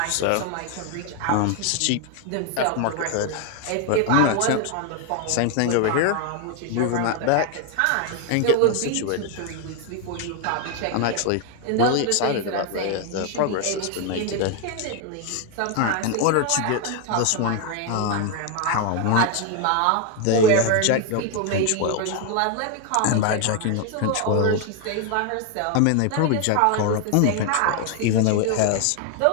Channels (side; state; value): both; different; correlation 0.01